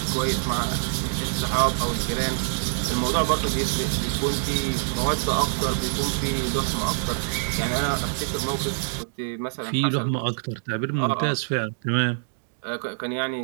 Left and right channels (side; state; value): left; silent; digital silence